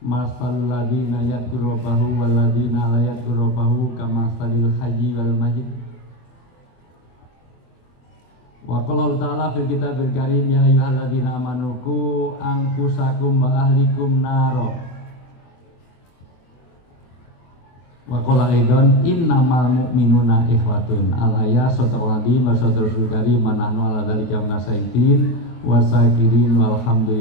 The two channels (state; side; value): late; right; 24 ms